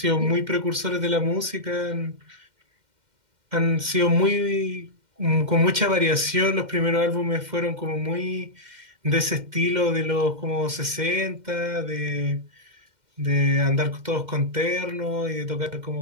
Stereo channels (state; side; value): late; left; 2.1 ms